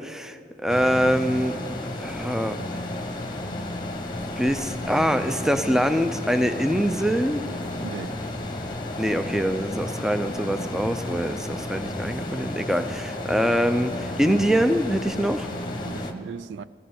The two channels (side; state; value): both; normal; correlation 0.87